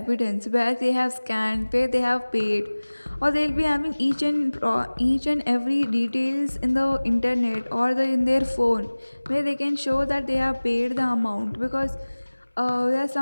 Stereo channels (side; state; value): both; inverted; correlation -1.00